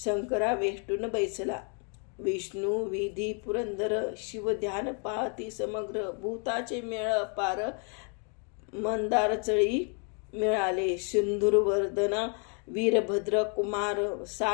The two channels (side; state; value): right; quieter; 39.6 dB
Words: वेष्टून बैसला विष्णू विधी पुरंदर शिव ध्यान पाहती समग्र भूताचे मेळ पार मंदार चळी मिळाले सिंधुरवर्धन वीरभद्र कुमार